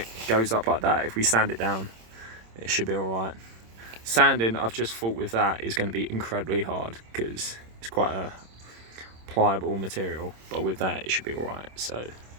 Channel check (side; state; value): left; late; 26 ms